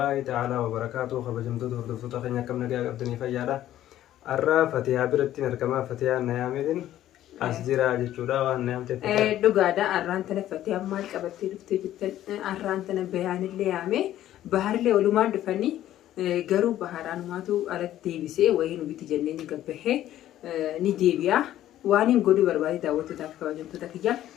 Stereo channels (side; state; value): right; quieter; 12.9 dB